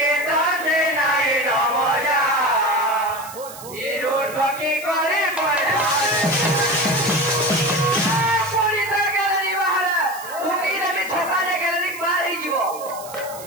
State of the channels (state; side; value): noise; right; hiss, 15 dB below the sound